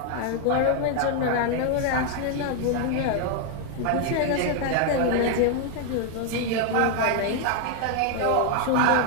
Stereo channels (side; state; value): both; different; correlation 0.00